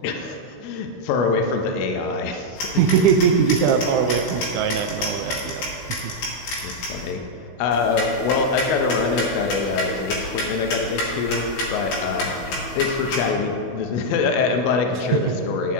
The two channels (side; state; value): right; late; 16 ms